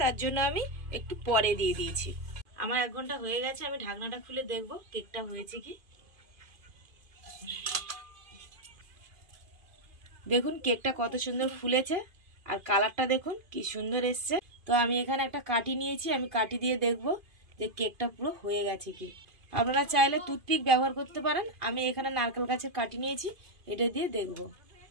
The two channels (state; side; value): late; left; 2.5 ms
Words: তার জন্য আমি একটু পরে দিয়ে দিয়েছি। আমার 1 ঘন্টা হয়ে গেছে। আমি ঢাকনাটা খুলে দেখবো কেকটা হয়েছে কি। দেখুন কেকটা কত সুন্দর ফুলেছে আর কালারটা দেখুন কি সুন্দর এসছে। তো আমি এখানে একটা কাঠি নিয়েছি, আমি কাঠি দিয়ে দেখবো যে কেকটা পুরো হয়ে গেছে কি। আপনারা চাইলে টুথপিক ব্যবহার করতে পারেন। আমি এখানে নারকেল গাছের কাঠি নিয়েছি, এটা দিয়ে দেখব।